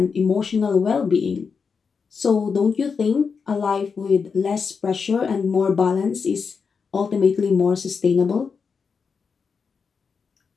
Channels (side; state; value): right; quieter; 5.6 dB